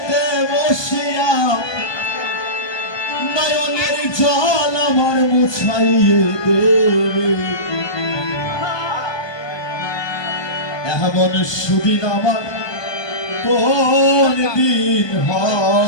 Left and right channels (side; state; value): right; late; 1.2 ms